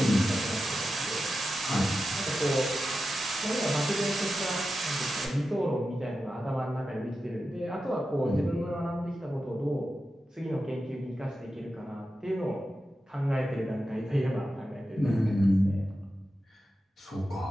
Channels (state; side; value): normal; both; correlation 0.91